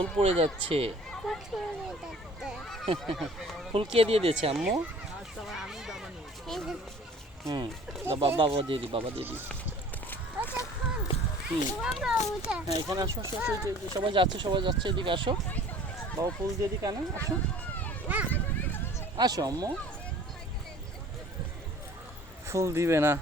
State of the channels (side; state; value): both; normal; correlation 0.49